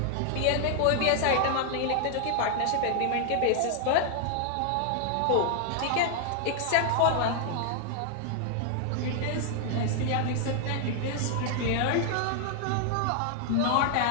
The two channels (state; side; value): different; both; correlation 0.00